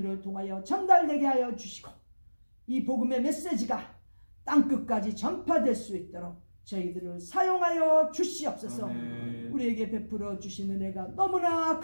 통하여 전달되게 하여 주시고 이 복음의 메시지가 땅끝까지 전파될 수 있도록 저희들을 사용하여 주시옵소서. 우리에게 베풀어 주신 은혜가 너무나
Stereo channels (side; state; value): both; inverted; correlation -1.00